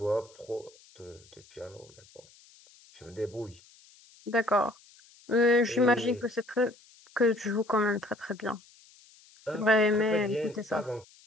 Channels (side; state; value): left; noise; hiss, 26 dB below the sound